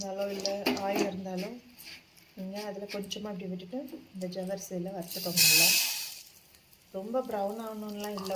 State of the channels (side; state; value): both; identical; correlation 1.00